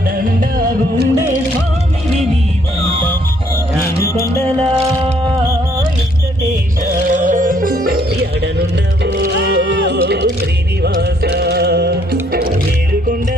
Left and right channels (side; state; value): both; normal; correlation 0.66